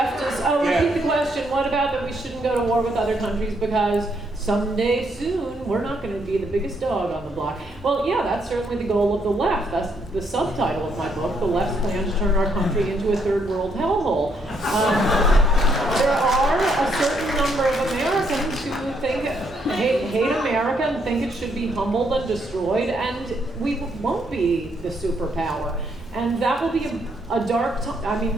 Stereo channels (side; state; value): both; normal; correlation 0.74